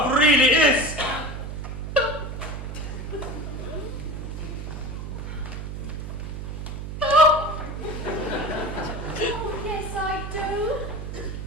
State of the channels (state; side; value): noise; right; hum, 7 dB below the sound